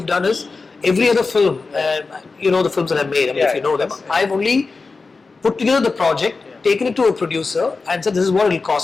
done is every other film, the films that I've made, if you know them, I've only put together the project, taken it to a producer, and said, this is what it'll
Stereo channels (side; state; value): right; quieter; 4.1 dB